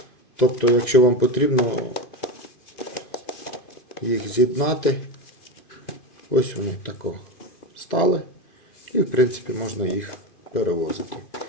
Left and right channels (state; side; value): late; right; 2.5 ms